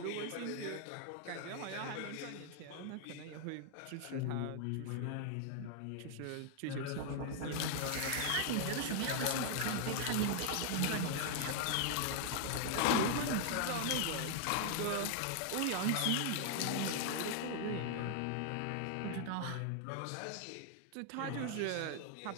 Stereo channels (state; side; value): different; both; correlation 0.00